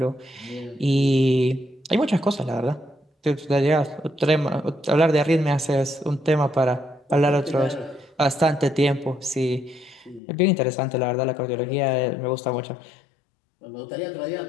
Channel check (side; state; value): right; drops out; at 10.2 s